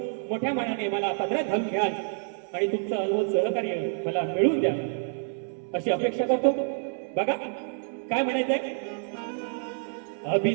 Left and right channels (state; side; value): silent; left; 59 dB below the other